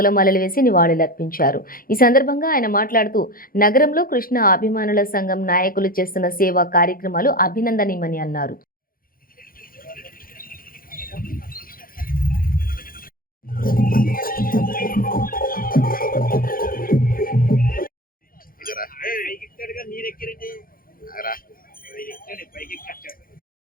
వేసి నివాళులర్పించారు. ఈ సందర్భంగా ఆయన మాట్లాడుతూ నగరంలో కృష్ణ అభిమానుల సంఘం నాయకులు చేస్తున్న సేవా కార్యక్రమాలు అభినందనీయమని అన్నారు.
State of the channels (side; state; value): right; late; 0.42 ms